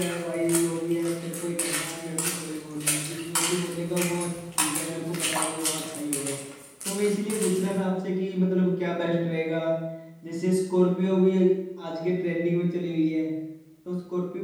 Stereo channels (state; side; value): identical; both; correlation 1.00